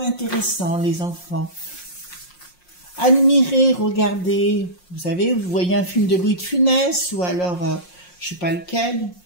les enfants. Admirez, regardez, vous savez, vous voyez un film de Louis de Funès, ou alors, je sais pas lequel,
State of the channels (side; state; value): right; late; 5.6 ms